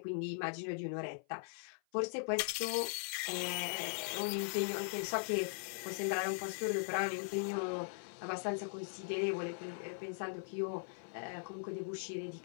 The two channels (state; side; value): silent; right; 51 dB below the other